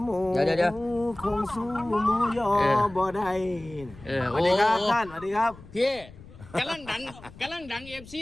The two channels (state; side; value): noise; left; rumble, 19 dB below the sound